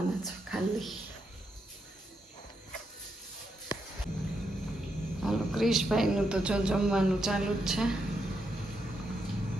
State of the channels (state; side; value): normal; both; correlation 0.81